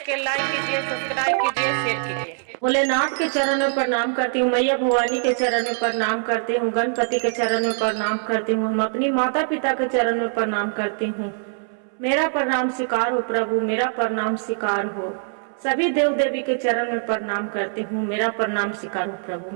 like कीजिए, subscribe कीजिए, शेयर कीजिए। भोलेनाथ के चरण में प्रणाम करती हूँ, मैया भवानी के चरण में प्रणाम करती हूँ, गणपति के चरण में प्रणाम करती हूँ, हम अपनी माता पिता के चरण में प्रणाम करती हूँ। मेरा प्रणाम स्वीकार हो प्रभु, मेरा प्रणाम स्वीकार हो। सभी देव देवी के चरण में प्रणाम करती हूँ, मेरा प्रणाम स्वीकार हो प्रभु,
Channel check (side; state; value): left; silent; 63 dB below the other